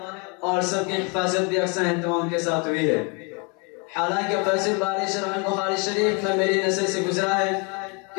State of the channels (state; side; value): quieter; right; 32.9 dB